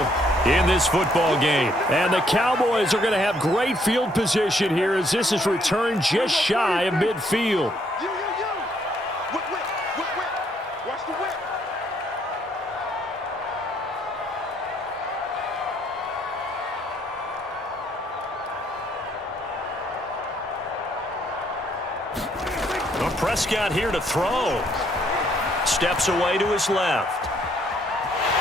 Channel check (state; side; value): normal; both; correlation 0.69